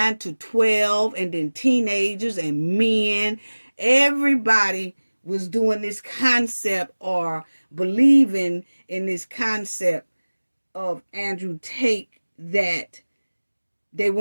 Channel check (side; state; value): both; inverted; correlation -1.00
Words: to 12, and then teenagers and men. Everybody was doing this concept or believing in this concept of Andrew Tate, that they